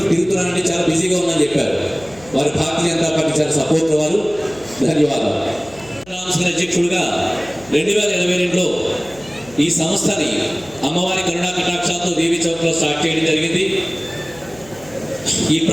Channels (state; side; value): noise; left; hum, 23 dB below the sound